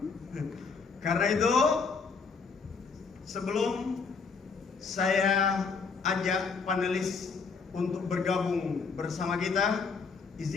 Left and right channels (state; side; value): quieter; right; 5.1 dB